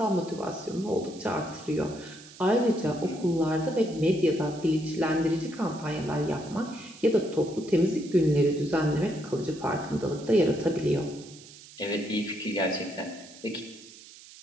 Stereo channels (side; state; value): right; noise; hiss, 19 dB below the sound